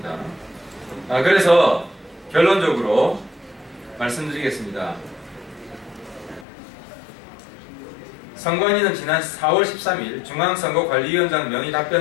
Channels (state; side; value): drops out; right; at 6.5 s